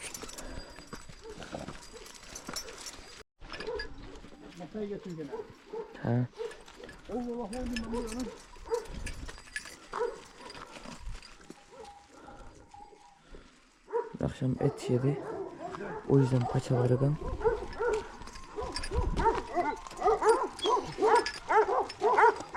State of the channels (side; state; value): both; identical; correlation 1.00